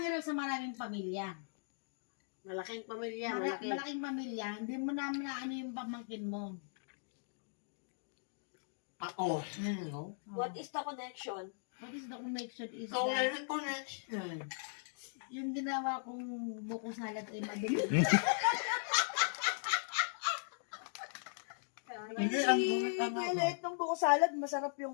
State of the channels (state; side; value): silent; right; digital silence